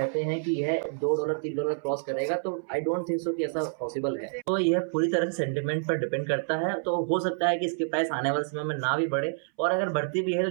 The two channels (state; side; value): silent; left; 59 dB below the other